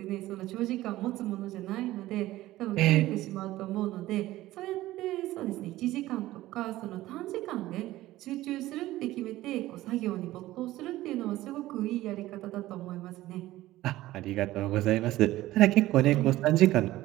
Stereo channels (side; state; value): left; quieter; 16.2 dB